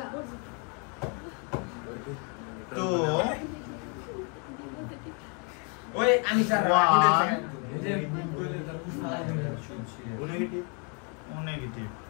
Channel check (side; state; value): right; quieter; 36.1 dB